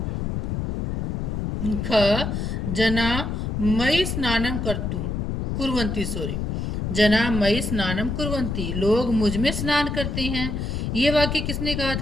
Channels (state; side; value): noise; left; rumble, 2 dB below the sound